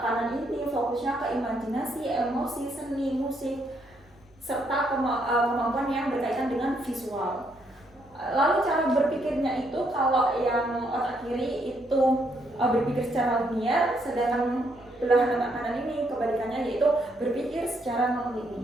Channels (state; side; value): noise; right; hum, 30 dB below the sound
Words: kanan ini fokusnya ke imajinasi, emosi, seni, musik, serta kemampuan yang berkaitan dengan visual. Lalu cara berpikirnya itu kalau yang otak kiri itu berpikir secara linear, sedangkan belahan otak kanan ini kebalikannya yaitu berpikir secara